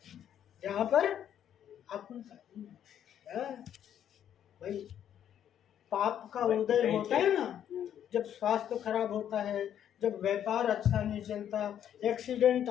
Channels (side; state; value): right; quieter; 9.9 dB